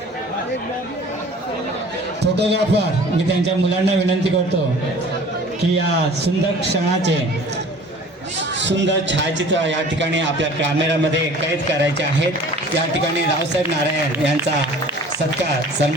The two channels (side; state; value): both; normal; correlation 0.47